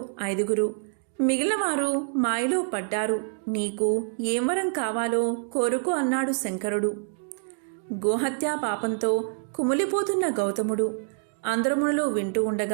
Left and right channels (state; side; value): silent; left; 61 dB below the other